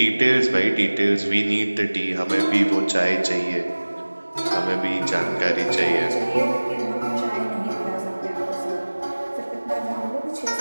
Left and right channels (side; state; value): both; inverted; correlation -1.00